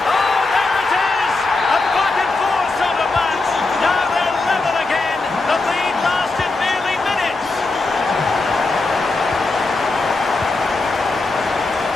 Oh, there it is! A back and forth sort of match. Now they're level again. The lead lasted nearly minutes.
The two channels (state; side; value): quieter; right; 3.4 dB